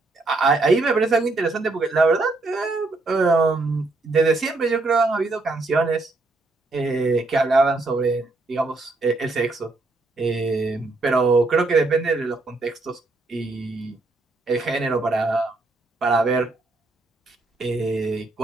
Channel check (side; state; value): left; quieter; 3.2 dB